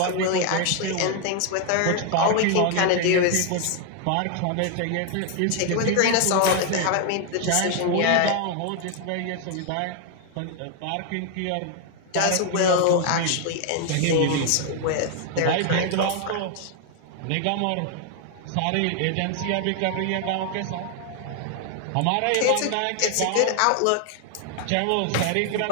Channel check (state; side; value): different; both; correlation 0.00